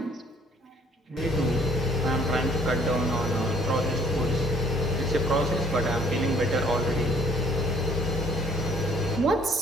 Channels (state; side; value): normal; both; correlation 0.61